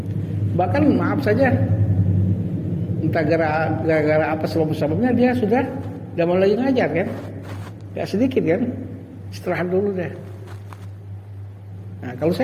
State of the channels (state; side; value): identical; both; correlation 1.00